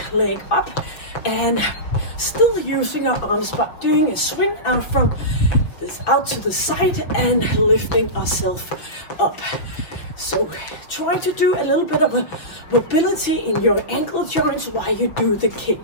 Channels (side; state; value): right; late; 6.2 ms